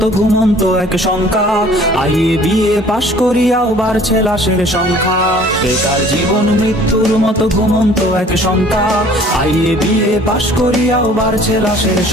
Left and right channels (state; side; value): normal; both; correlation 0.52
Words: ঘুমন্ত এক সংখ্যা, আইয়ে বিয়ে পাশ করিয়াও বাড়ছে লাশের সংখ্যা। বেকার জীবন মৃত্যুর মতো ঘুমন্ত এক সংখ্যা, আইয়ে বিয়ে পাশ করিয়াও বাড়ছে লাশের